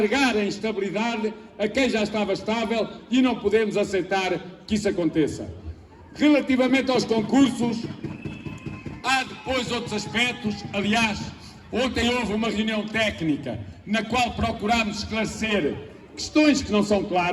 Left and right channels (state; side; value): identical; both; correlation 1.00